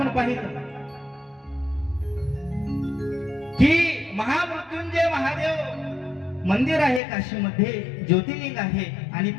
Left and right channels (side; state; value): right; drops out; at 7.0 s